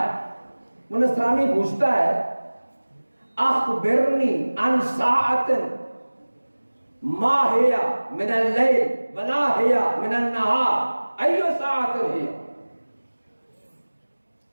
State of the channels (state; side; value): inverted; both; correlation -1.00